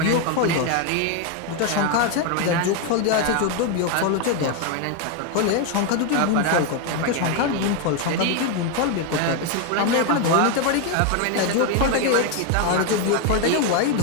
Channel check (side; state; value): both; different; correlation 0.02